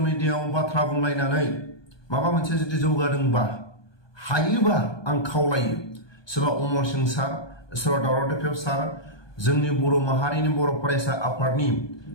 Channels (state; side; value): late; right; 1.2 ms